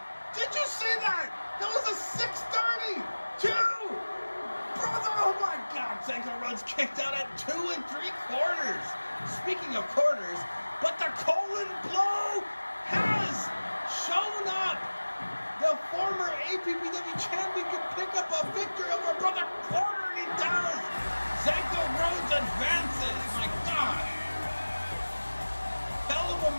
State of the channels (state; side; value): inverted; both; correlation -1.00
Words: Did you see that? That was a 632! Brother, oh my God, Zanka Rhodes kicked out at 2 3/4. Speaking of quarters, but the colon blow has shown up. The former APPW champion can pick up a victory over Brother Corda, and he does. Zanka Rhodes advances. My God. Hell of a